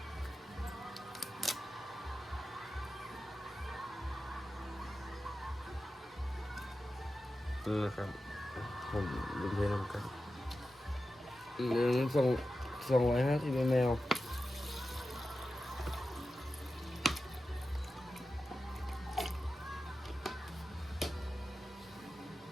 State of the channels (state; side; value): normal; both; correlation 0.92